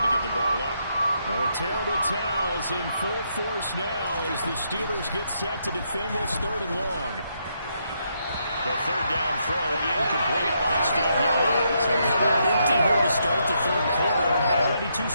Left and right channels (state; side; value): inverted; both; correlation -0.77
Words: to give the ball up. The terrible towels in full force now as the Steelers get set to defend this 3rd and long. The 3rd down throw incomplete by Steve Young. So coming up empty here to start the 3rd quarter. Already 2